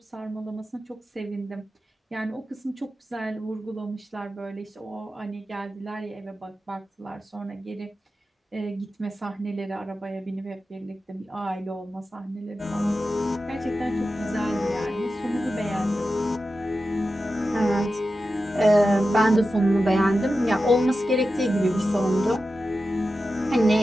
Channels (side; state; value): both; normal; correlation 0.92